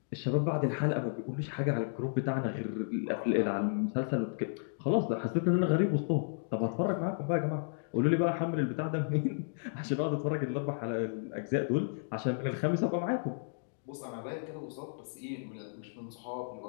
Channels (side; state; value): right; silent; digital silence